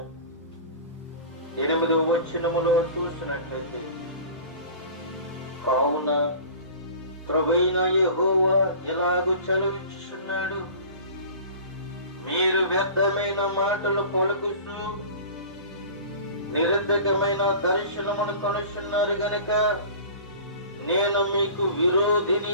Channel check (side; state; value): both; inverted; correlation -0.40